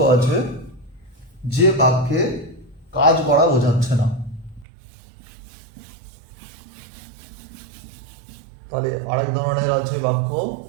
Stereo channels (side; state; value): left; drops out; at 4.7 s